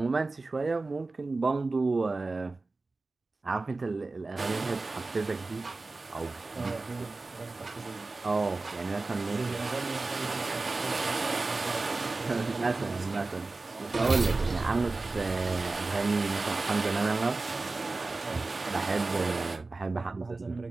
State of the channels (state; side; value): quieter; left; 3.5 dB